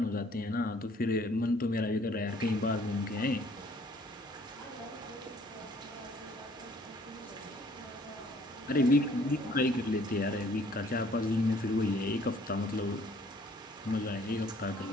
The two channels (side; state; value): both; normal; correlation 0.59